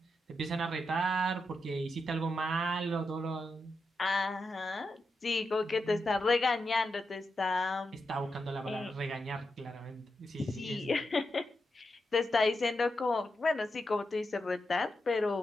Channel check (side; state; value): both; normal; correlation 0.87